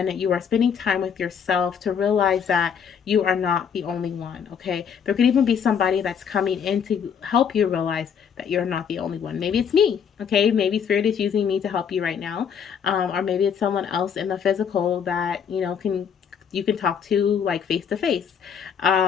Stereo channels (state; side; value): quieter; right; 7.4 dB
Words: you are spending time with yourself to realize that you are not the only one. Okay, there could even be somebody that's coming in to help you realize that you're not the only one. Maybe it's me. Okay, maybe Spirit is using me to help you right now, or maybe it's someone else in the physical that you can talk to like face to face.